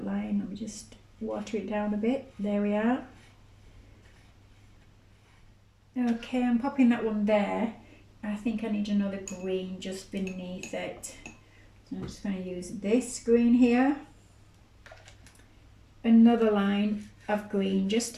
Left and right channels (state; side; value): identical; both; correlation 1.00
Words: line. Let me just water it down a bit. There we are. Okay, I'm popping that one there. I think I need another green just beneath it. So I'm just going to use this green here. Another line of green just